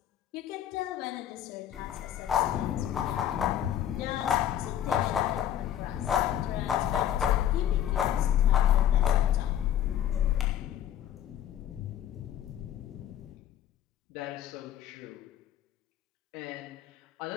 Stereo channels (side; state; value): right; quieter; 10.9 dB